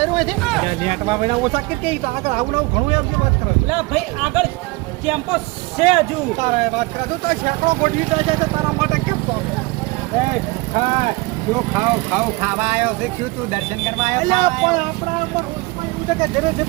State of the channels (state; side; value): quieter; left; 23.7 dB